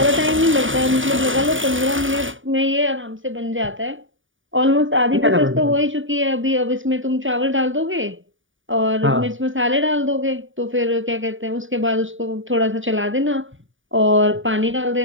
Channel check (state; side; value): late; left; 0.57 ms